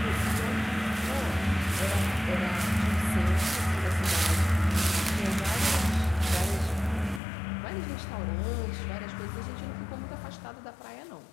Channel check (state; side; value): drops out; right; at 7.2 s